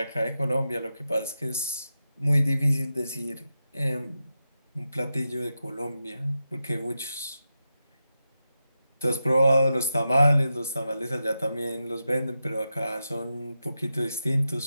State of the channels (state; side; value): inverted; both; correlation -0.89